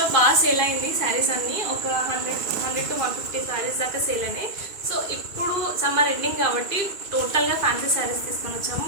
బాగా సేల్ అయింది శారీస్ అన్నీ. ఒక 100 to 150 శారీస్ దాకా సేల్ అయినాయి. సో ఇప్పుడు సమ్మర్ ఎండింగ్ కాబట్టి టోటల్గా ఫ్యాన్సీ శారీస్ తీసుకొని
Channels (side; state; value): left; late; 2.6 ms